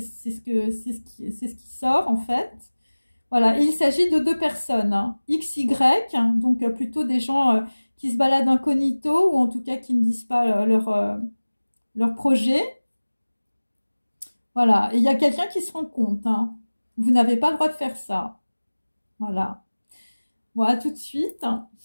ce qui sort en fait. Voilà, et il s'agit de deux personnes, hein. X, Y, donc plutôt des gens qui se baladent incognito ou en tout cas qui ne disent pas leur projet. Voilà, et il y a quelqu'un qui se rend compte, hein. Vous n'avez pas le droit de faire ça. Voilà. Voilà, tout de suite, hein,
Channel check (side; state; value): both; inverted; correlation -1.00